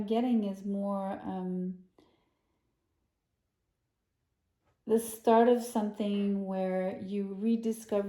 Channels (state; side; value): identical; both; correlation 1.00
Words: getting is more the start of something where you rediscover